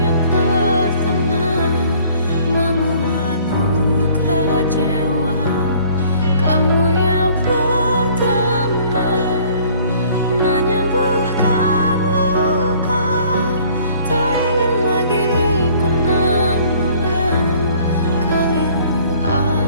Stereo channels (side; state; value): both; inverted; correlation -0.56